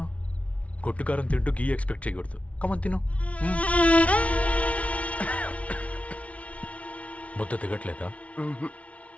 కొట్టుకారం తింటూ గీ ఎక్స్పెక్ట్ చేయకూడదు. కమన్ తిను. ముద్ద దిగట్లేదా?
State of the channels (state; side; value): late; right; 0.065 ms